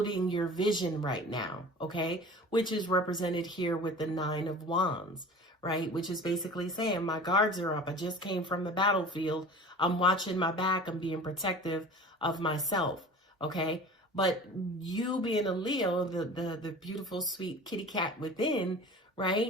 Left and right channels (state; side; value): normal; both; correlation 0.40